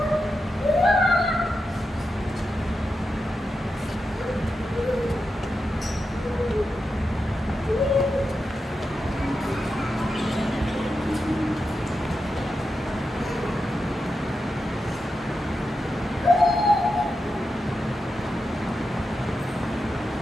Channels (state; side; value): normal; both; correlation 0.88